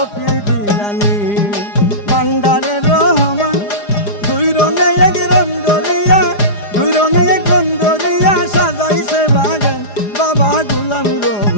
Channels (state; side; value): late; right; 4.9 ms